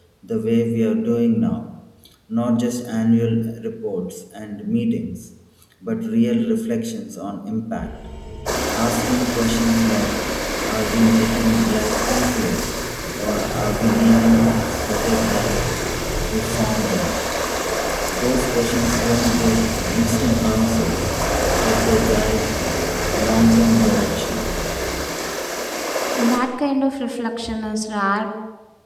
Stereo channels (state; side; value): identical; both; correlation 1.00